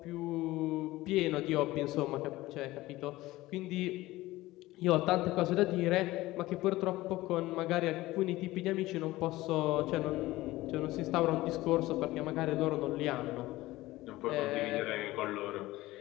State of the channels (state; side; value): quieter; right; 17.9 dB